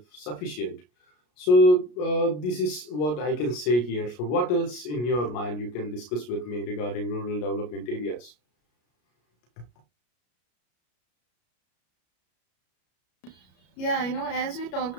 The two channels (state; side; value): late; right; 33 ms